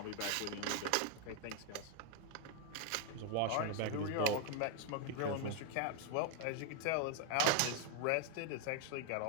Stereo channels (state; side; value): different; both; correlation 0.00